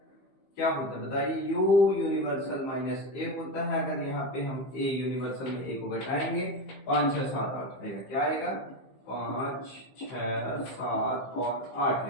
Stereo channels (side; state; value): right; late; 15 ms